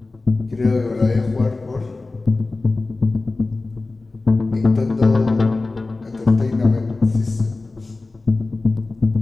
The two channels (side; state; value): right; quieter; 3.4 dB